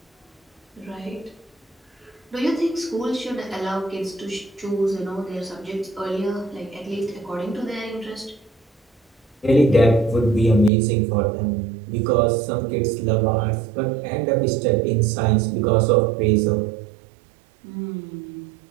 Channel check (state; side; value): drops out; left; at 10.7 s